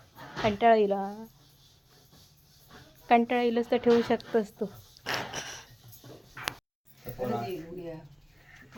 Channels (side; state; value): both; identical; correlation 1.00